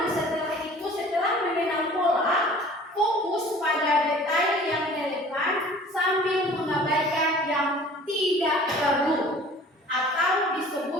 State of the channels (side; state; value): both; normal; correlation 0.47